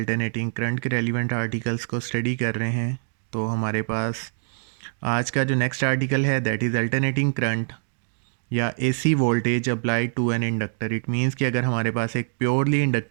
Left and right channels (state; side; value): silent; left; digital silence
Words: करंट के रेलिवेंट आर्टिकल्स को स्टडी कर रहे हैं, तो हमारे पास आज का जो नेक्स्ट आर्टिकल है दैट इज़ अल्टरनेटिंग करंट या AC voltage applied to an inductor. It means कि अगर हमारे पास एक प्योरली